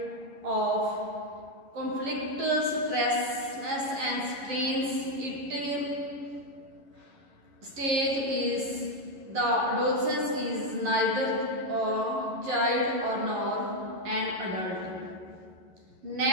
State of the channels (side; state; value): left; late; 11 ms